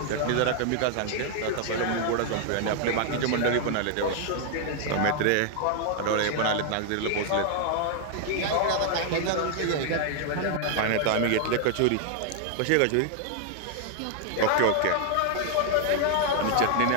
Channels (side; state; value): both; different; correlation 0.00